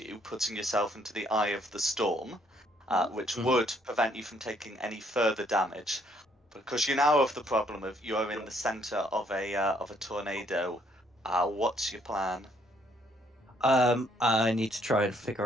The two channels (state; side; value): normal; both; correlation 0.67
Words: putting yourself into the eye of the storm, which would prevent you from taking any further damage. Because you now have the problem of you are in the center of a tornado. What's your plan? I need to try and